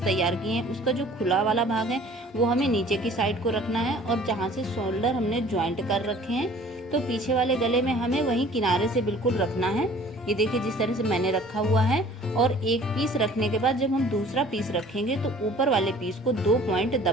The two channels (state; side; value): normal; both; correlation 0.50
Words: तैयार किए हैं, उसका जो खुला वाला भाग है वो हमें नीचे की साइड को रखना है और जहाँ से शोल्डर हमने ज्वाइंट कर रखे हैं तो पीछे वाले गले में हमें वहीं किनारे से बिल्कुल रखना है। ये देखिए जिस तरह से मैंने रखा हुआ है। और एक पीस रखने के बाद जब हम दूसरा पीस रखेंगे तो ऊपर वाले पीस को 2 पॉइंट